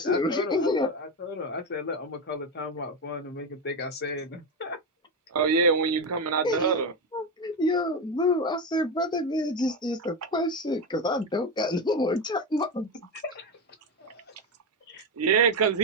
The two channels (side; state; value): both; normal; correlation 0.14